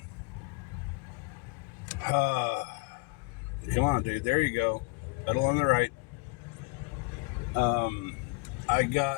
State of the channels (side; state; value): right; quieter; 28.1 dB